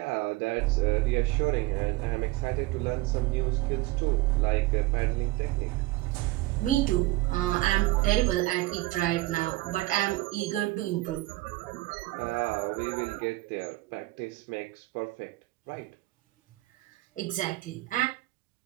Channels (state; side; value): quieter; left; 18.9 dB